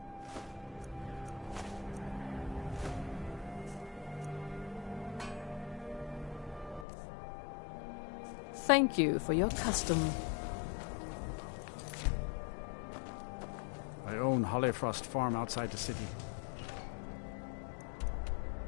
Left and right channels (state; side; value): drops out; right; at 6.9 s